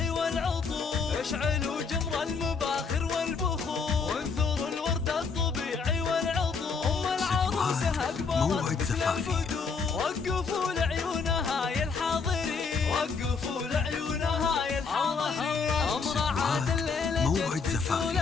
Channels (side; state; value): right; quieter; 5.1 dB